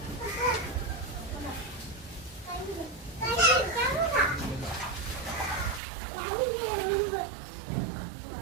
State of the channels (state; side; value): drops out; left; at 5.8 s